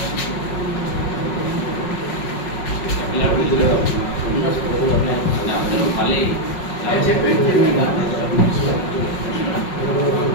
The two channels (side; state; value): right; late; 5.5 ms